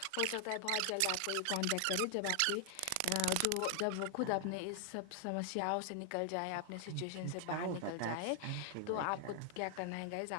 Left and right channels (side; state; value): both; different; correlation 0.00